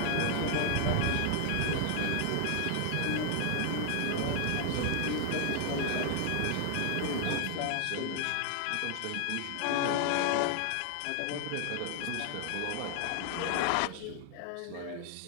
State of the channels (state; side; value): different; both; correlation 0.00